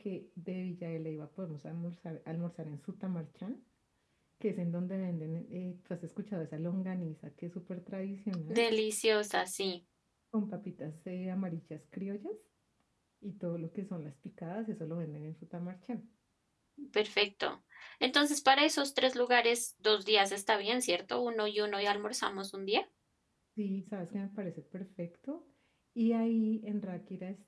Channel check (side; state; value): both; identical; correlation 1.00